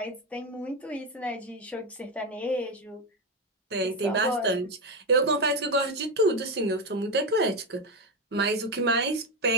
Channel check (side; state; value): both; normal; correlation 0.12